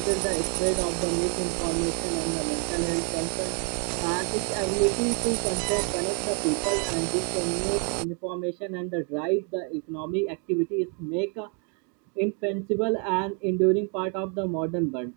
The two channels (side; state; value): left; quieter; 37.7 dB